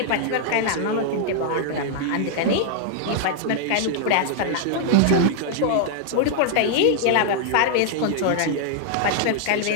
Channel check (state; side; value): different; both; correlation -0.01